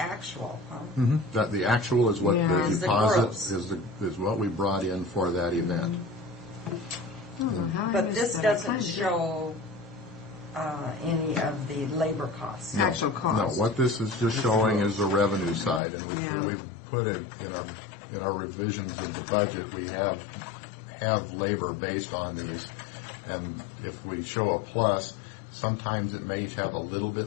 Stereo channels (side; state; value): right; drops out; at 15.8 s